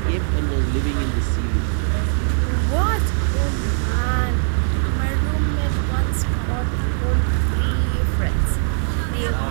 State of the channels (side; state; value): left; silent; 65 dB below the other